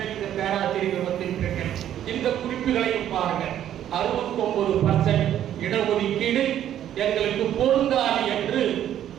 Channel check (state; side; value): quieter; left; 11.0 dB